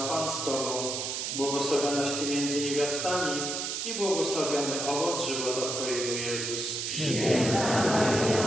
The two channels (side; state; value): right; noise; hiss, 3 dB below the sound